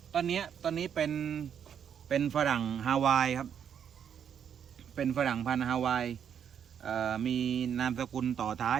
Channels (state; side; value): quieter; left; 8.3 dB